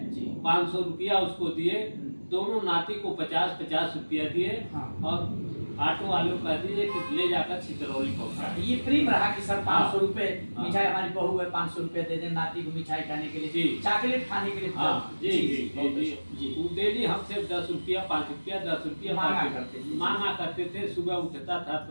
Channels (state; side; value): inverted; both; correlation -1.00